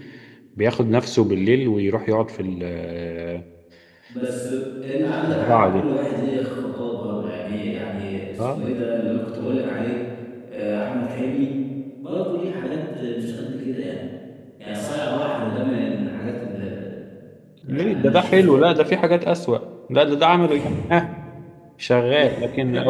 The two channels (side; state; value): both; identical; correlation 1.00